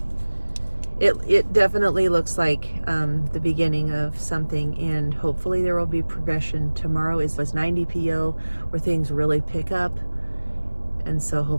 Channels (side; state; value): both; inverted; correlation -1.00